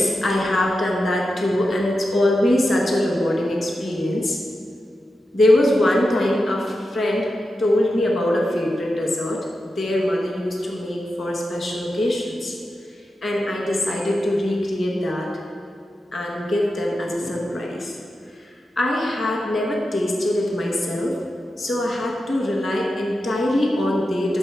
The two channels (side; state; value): both; normal; correlation 0.90